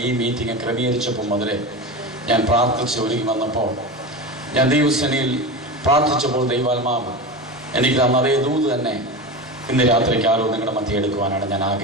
ഈ മീറ്റിംഗ് ക്രമീകരിച്ചപ്പോൾ മുതലേ ഞാൻ പ്രാർത്ഥിച്ച് ഒരുങ്ങി വന്നപ്പോൾ ഞാൻ ദൈവസേനയിൽ പ്രാർത്ഥിച്ചപ്പോൾ ദൈവാത്മാവ് എനിക്ക് തന്ന അതേ ദൂത് തന്നെ ഇന്ന് രാത്രിക്കാലവും നിങ്ങളുടെ മധ്യ എടുക്കുവാനാണ് ഞാൻ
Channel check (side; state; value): both; normal; correlation 0.25